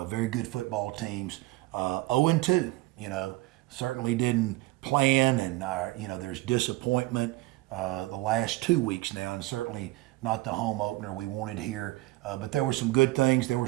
Very good football teams. 0-2, certainly didn't plan, and there's disappointment the last 2 weeks now, and certainly not the home opener we wanted here. But there were some good things. There were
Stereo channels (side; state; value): left; quieter; 19.6 dB